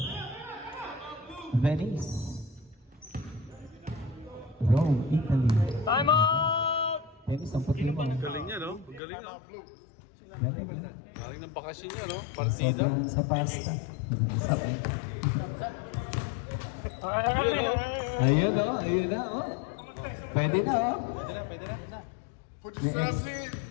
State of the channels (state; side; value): drops out; right; at 9.0 s